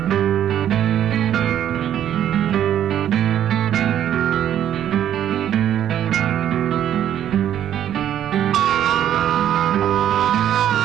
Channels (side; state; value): left; quieter; 10.6 dB